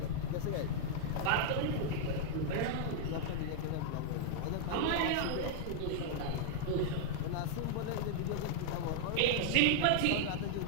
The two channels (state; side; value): different; both; correlation -0.01